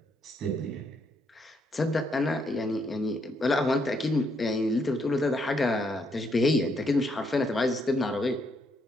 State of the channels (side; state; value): both; normal; correlation 0.74